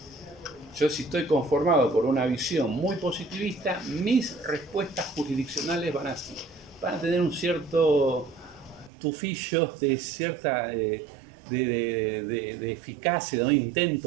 Yo, si estoy conformado por una visión muy positivista, mis respuestas jurisdiccionales van a tener un cierto tufillo de cierta de eficacia, de un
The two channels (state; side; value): drops out; left; at 8.9 s